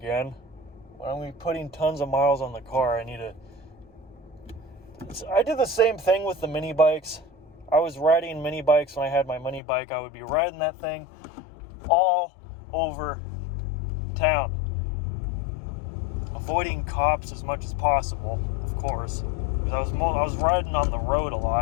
When I'm putting tons of miles on the car, I did the same thing with the mini bikes. I was riding mini bikes when I had my mini bike. I would be riding that thing all over town. Avoiding cops as much as possible, of course. Because I was riding on the road a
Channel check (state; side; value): drops out; right; at 9.6 s